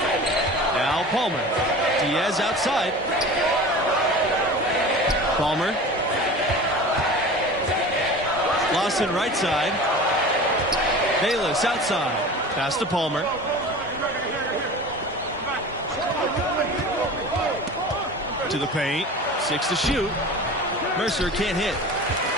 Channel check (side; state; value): both; normal; correlation 0.36